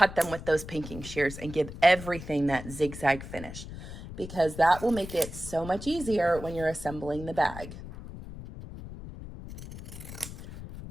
them with those pinking shears and give everything that zigzag finish, because that will make it so much easier when you're assembling the bag.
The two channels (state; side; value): noise; left; rumble, 12 dB below the sound